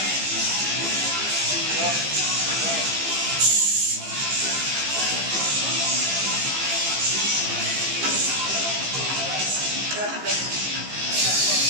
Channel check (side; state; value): left; late; 15 ms